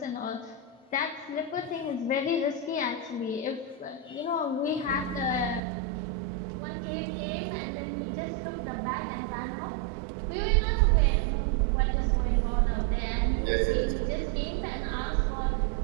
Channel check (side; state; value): left; drops out; at 5.6 s